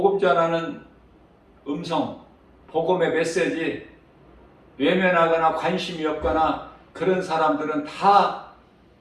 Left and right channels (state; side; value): identical; both; correlation 1.00